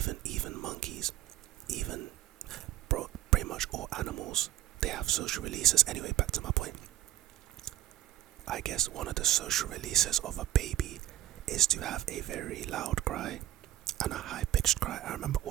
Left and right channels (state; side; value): quieter; left; 13.6 dB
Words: monkeys, even pretty much all animals, they have social releases. Anyway, back to my point. I guess one of the social releases of a baby is to have a very loud cry and a high-pitched cry. I remember